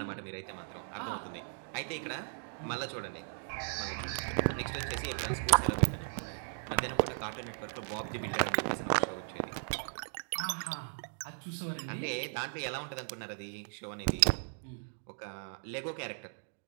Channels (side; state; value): left; silent; digital silence